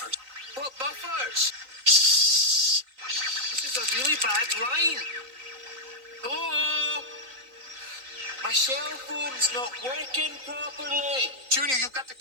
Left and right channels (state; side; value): late; left; 3.9 ms